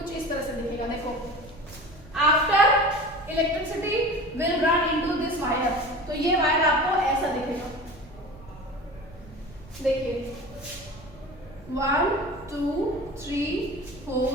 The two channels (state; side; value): noise; right; rumble, 20 dB below the sound